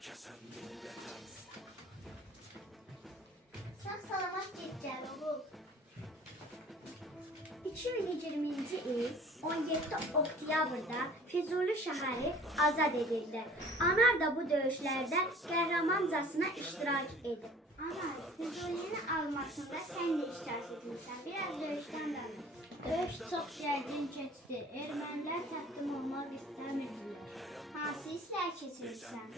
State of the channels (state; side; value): normal; both; correlation 0.49